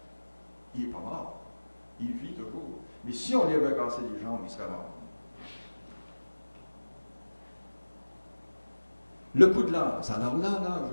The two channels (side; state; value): both; inverted; correlation -1.00